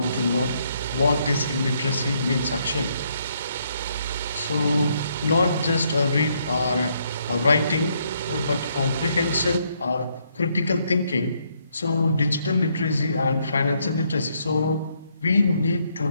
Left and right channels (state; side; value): inverted; both; correlation -0.73